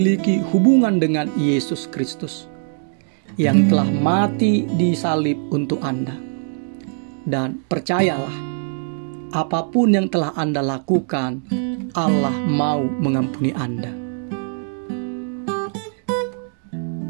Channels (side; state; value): left; silent; 61 dB below the other